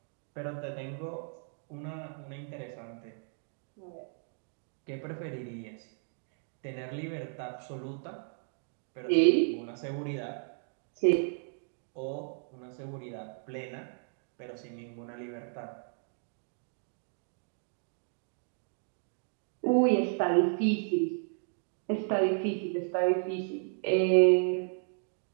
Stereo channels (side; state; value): left; silent; 55 dB below the other